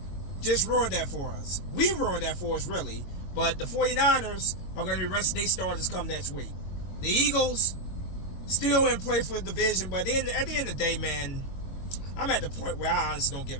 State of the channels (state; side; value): late; right; 22 ms